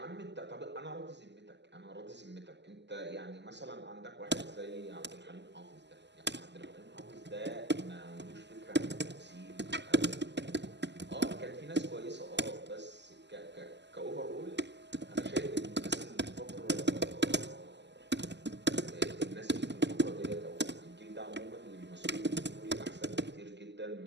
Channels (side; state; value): left; late; 0.51 ms